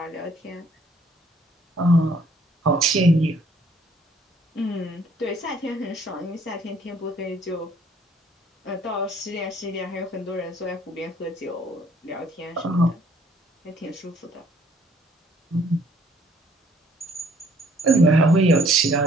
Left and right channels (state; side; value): normal; both; correlation 0.61